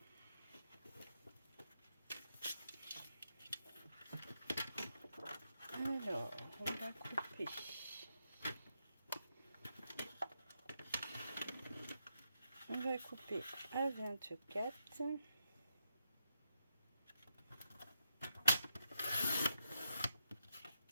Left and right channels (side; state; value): both; inverted; correlation -0.84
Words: Alors, on va couper. On va couper à 24.